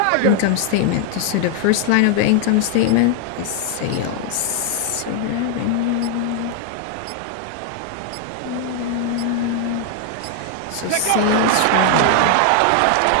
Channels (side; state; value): both; different; correlation 0.00